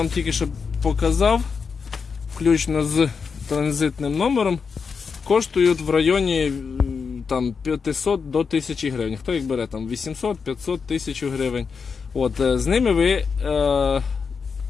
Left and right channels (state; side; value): quieter; right; 5.6 dB